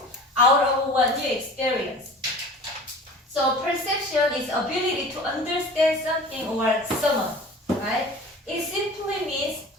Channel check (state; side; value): normal; both; correlation 0.40